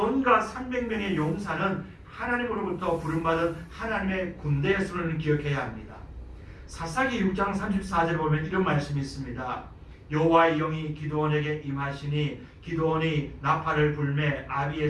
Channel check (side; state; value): both; identical; correlation 1.00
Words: 300명의 용사는 하나님으로부터 부름받은 하나님의 군대의 수를 기억해야 합니다. 사사기 6장 34절에 보면 이런 말씀이 있습니다. 여호와의 영이 기드온에게 임하시니 기드온이 나팔을 불매